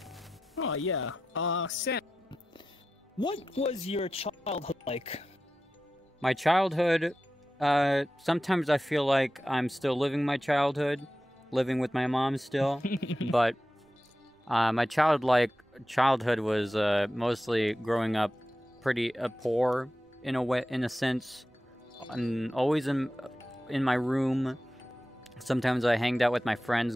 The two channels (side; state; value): both; normal; correlation 0.92